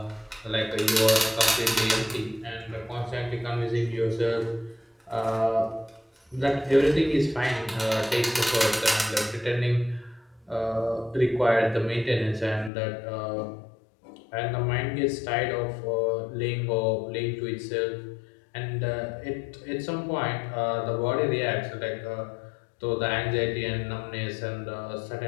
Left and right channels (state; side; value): drops out; right; at 12.7 s